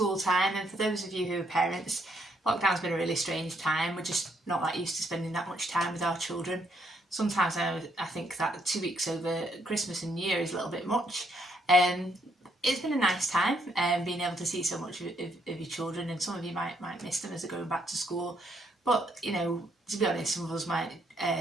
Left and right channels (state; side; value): normal; both; correlation 0.72